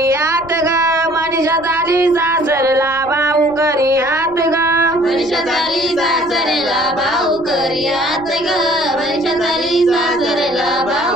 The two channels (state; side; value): noise; left; rumble, 23 dB below the sound